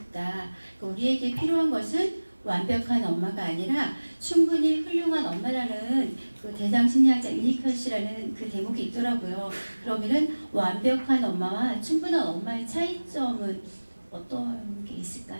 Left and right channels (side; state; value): both; inverted; correlation -1.00